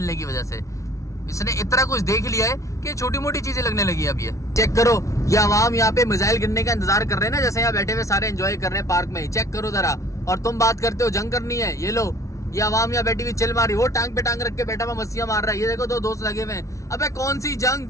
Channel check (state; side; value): late; right; 0.15 ms